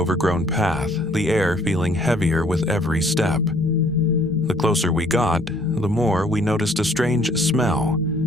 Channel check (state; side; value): normal; both; correlation 0.61